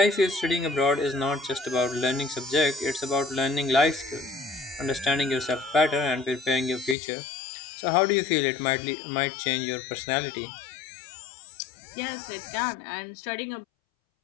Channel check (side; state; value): right; drops out; at 7.0 s